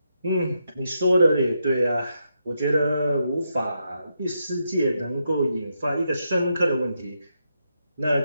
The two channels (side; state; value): both; inverted; correlation -0.82